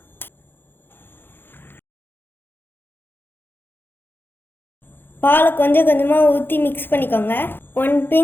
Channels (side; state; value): right; late; 0.10 ms